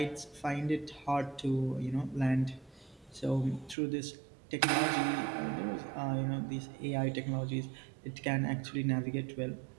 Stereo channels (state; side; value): drops out; left; at 3.8 s